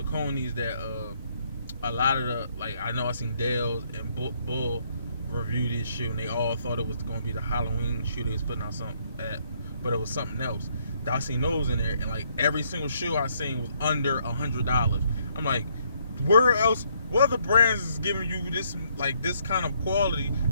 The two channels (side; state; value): both; inverted; correlation -0.70